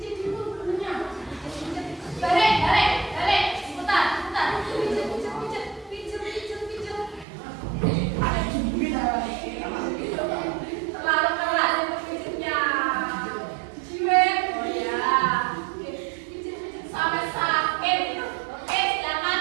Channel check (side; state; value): left; drops out; at 7.2 s